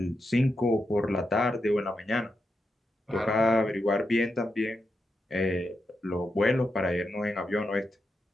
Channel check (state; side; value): normal; both; correlation 0.86